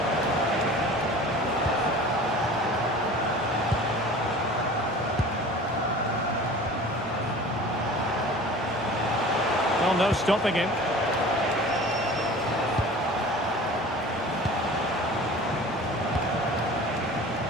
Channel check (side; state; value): both; normal; correlation 0.41